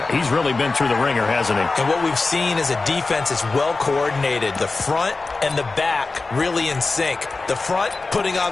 He's really been through the ringer, hasn't he? And what we've seen is a defense that's well coordinated. The front and the back really in sync. The front putting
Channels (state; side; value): quieter; right; 3.7 dB